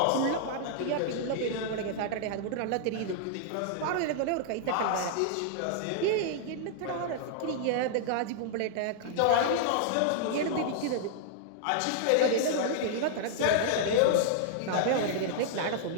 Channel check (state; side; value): different; both; correlation -0.01